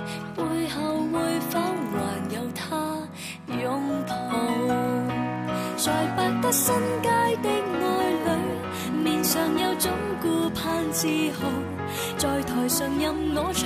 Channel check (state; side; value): identical; both; correlation 1.00